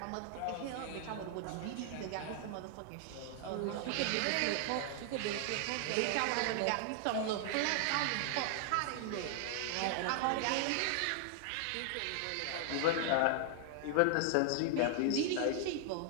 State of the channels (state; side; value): different; both; correlation 0.00